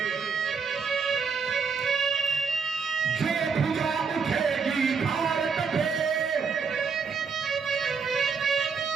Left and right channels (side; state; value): left; quieter; 5.6 dB